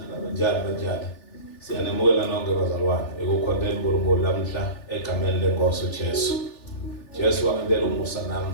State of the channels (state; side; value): late; right; 3.4 ms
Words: banjani. Siyanemukela nonke bazalwane. Ekukhondeni uNkulunkulu lamhla egameni lenkosi uJesu. Jesu wangenzela umusa